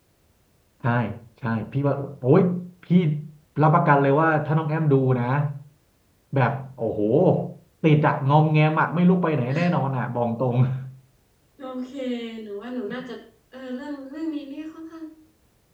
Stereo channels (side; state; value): both; identical; correlation 1.00